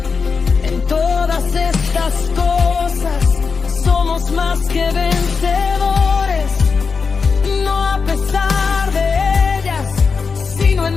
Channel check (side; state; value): right; quieter; 5.1 dB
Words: En todas estas cosas somos más que vencedores, no a pesar de ellas, sino